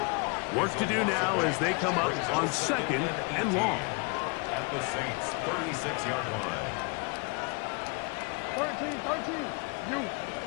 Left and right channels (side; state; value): right; quieter; 32.4 dB